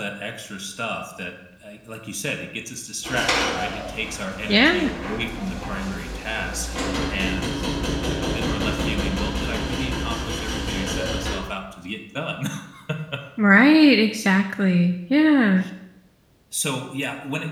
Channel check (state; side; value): identical; both; correlation 1.00